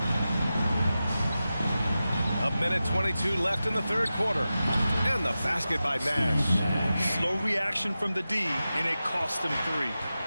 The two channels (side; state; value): both; inverted; correlation -0.93